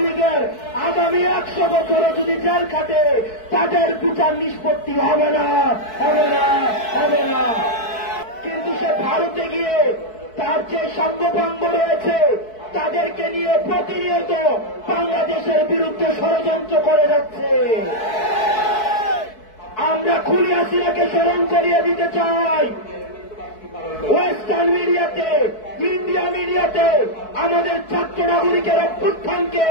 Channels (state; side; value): late; right; 4.6 ms